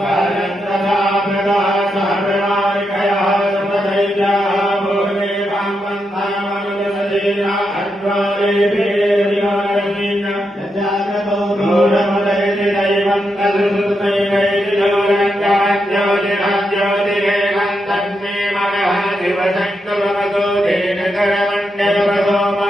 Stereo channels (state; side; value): normal; both; correlation 0.84